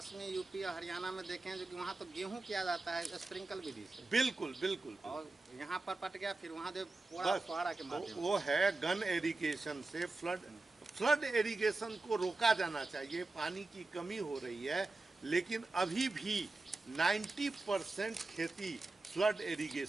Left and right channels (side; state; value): left; quieter; 3.3 dB